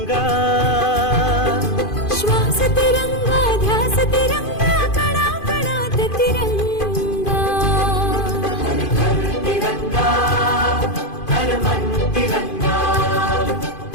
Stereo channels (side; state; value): right; late; 2.5 ms